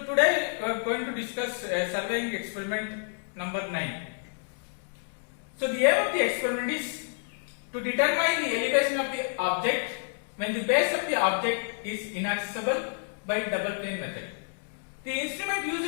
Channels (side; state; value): right; silent; digital silence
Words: today we are going to discuss surveying experiment number 9. So the aim of the experiment is to determine the elevation of the object when the base of the object is inaccessible by double plane method. The instrument